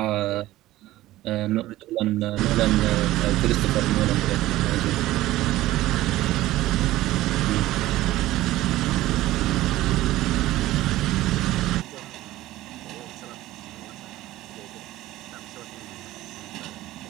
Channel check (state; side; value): quieter; left; 16.1 dB